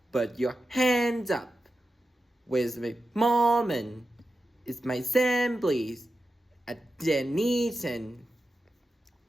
Put your hands up. Where's my moment? It's my Sam, please. At Denison.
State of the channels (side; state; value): both; normal; correlation 0.91